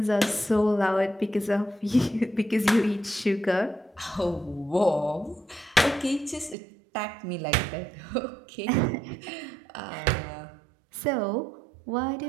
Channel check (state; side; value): drops out; left; at 6.6 s